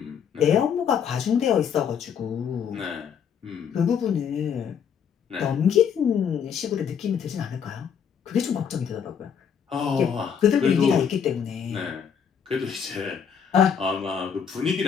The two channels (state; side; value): quieter; right; 7.5 dB